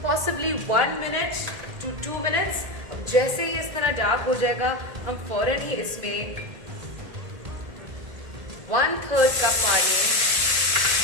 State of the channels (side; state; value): left; late; 1.8 ms